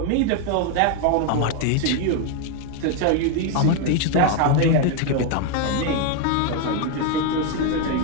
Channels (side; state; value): both; different; correlation 0.01